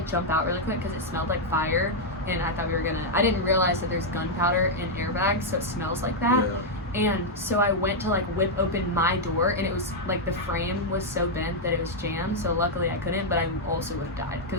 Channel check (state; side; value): normal; both; correlation -0.03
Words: jump out really quick because it smelled like fire, and I thought I didn't realize that there's gunpowder in airbags, so it smells like that. Yeah. And so I went to like whip open my door, and it was like the frame was so bent that it was jammed. So luckily I couldn't, but I also would have died